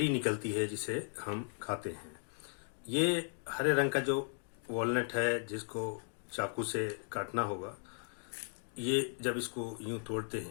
निकलती है जिसे हम खाते हैं। ये हरे रंग का जो वॉलनट है जिसको चाकू से काटना होगा, ये जब इसको यूं तोड़ते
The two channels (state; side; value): silent; right; 53 dB below the other